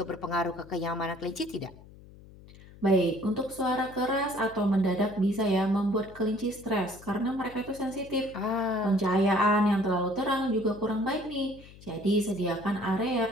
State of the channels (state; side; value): noise; left; hum, 20 dB below the sound